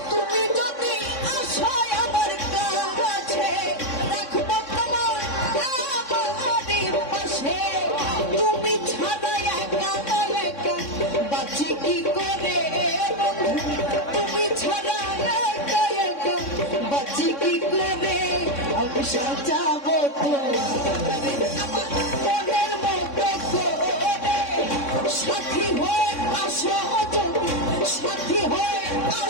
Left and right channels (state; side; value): late; right; 3.6 ms